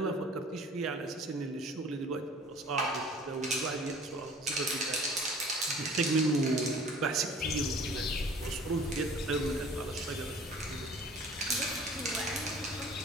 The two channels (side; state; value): both; normal; correlation 0.48